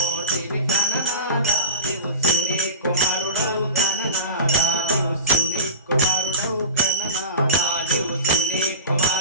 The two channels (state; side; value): inverted; both; correlation -0.34